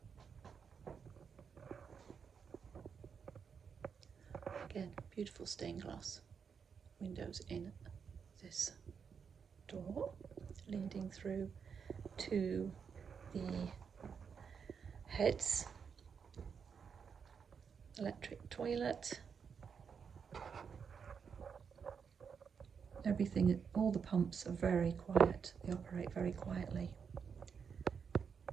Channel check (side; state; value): left; quieter; 6.5 dB